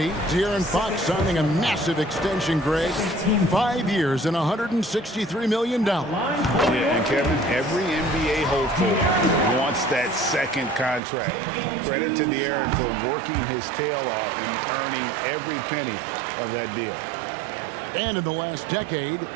De'Aaron Fox signing a massive extension, Greg. 5 years and $163 million. Yeah, and Kevin, every NBA hopeful wants that second contract. Credit to De'Aaron for working his tail off and earning every penny of that deal. And in the last decade,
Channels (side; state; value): left; drops out; at 11.0 s